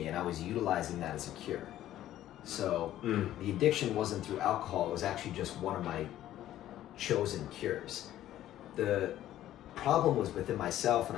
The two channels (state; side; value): quieter; right; 13.0 dB